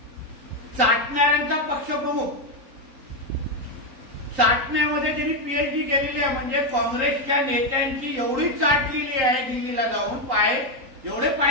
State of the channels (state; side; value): late; left; 3.9 ms